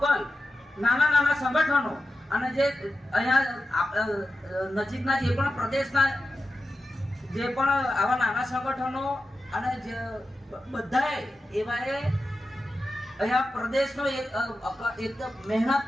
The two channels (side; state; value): both; normal; correlation 0.92